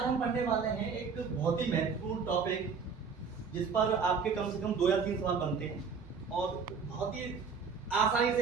हम पढ़ने वाले हैं एक बहुत ही महत्वपूर्ण टॉपिक जिस पर आपके कम से कम 2 या 3 सवाल बनते हैं और बहुत ही आसानी से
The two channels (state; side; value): quieter; left; 5.6 dB